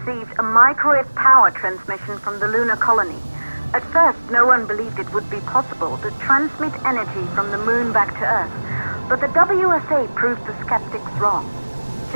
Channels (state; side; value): inverted; both; correlation -1.00